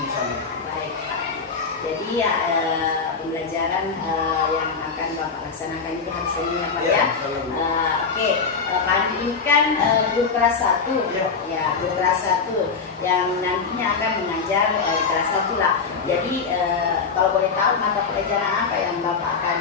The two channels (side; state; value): right; quieter; 5.2 dB